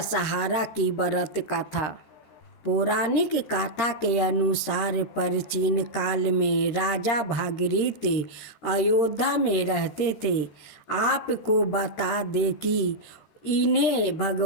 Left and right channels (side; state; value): right; late; 14 ms